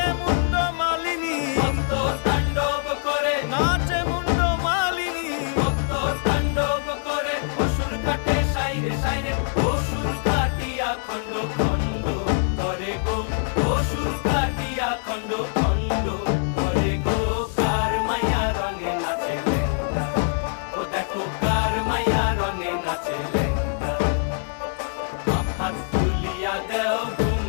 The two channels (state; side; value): silent; right; 63 dB below the other